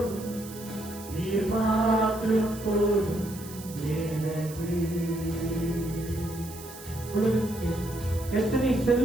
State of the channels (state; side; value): noise; right; hiss, 15 dB below the sound